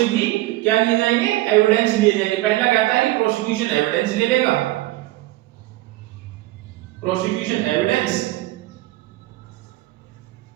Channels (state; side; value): quieter; left; 17.9 dB